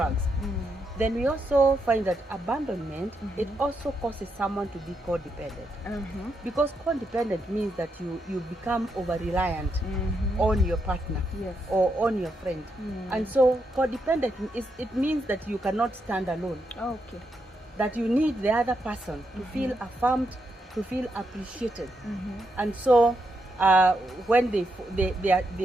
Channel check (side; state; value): both; normal; correlation 0.81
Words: Then we also find that abandonment, it also causes someone to be codependent, because codependent means that you become over-reliant on your partner or on your friend. And so codependent, it means that you cannot stand alone. That you need the other person to feel affirmed, to feel appreciated. And so when